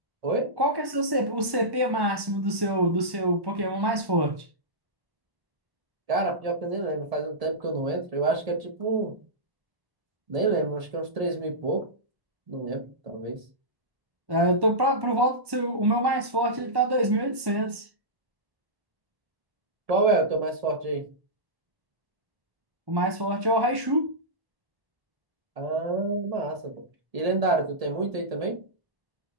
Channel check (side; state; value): left; late; 1.1 ms